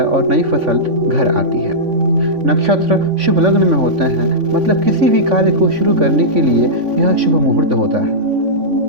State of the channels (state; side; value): late; left; 3.5 ms